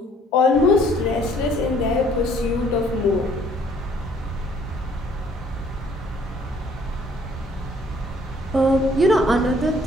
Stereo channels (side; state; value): both; normal; correlation 0.60